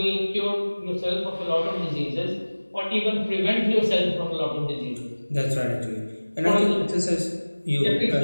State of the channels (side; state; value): both; inverted; correlation -1.00